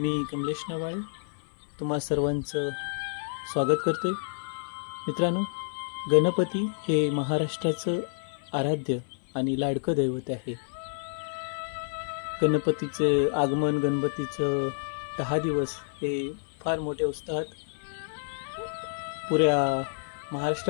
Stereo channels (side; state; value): right; silent; digital silence